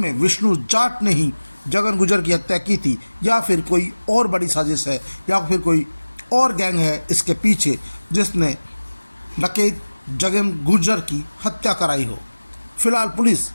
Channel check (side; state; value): both; inverted; correlation -1.00